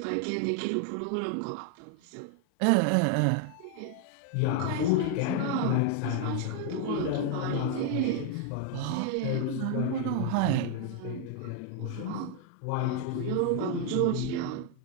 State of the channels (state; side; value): different; both; correlation 0.00